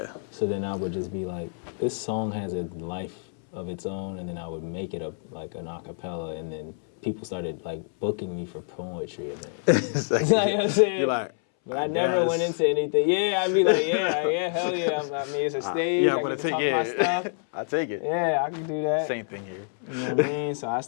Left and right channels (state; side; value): silent; right; 60 dB below the other